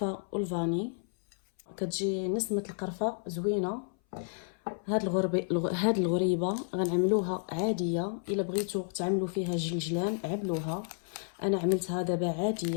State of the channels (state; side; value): silent; right; 57 dB below the other